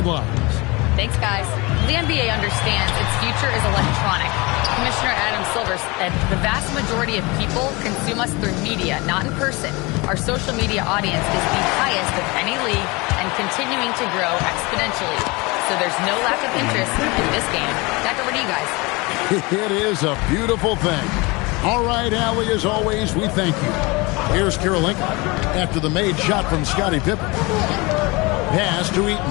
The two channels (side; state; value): right; quieter; 25.3 dB